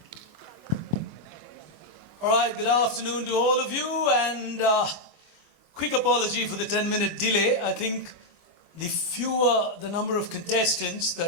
All right, good afternoon to all of you, and quick apology for the 10-minute delay. I think the fewer the number of contestants,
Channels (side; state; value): left; late; 25 ms